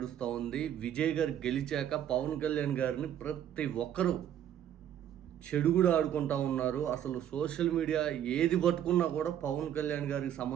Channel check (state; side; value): quieter; left; 10.4 dB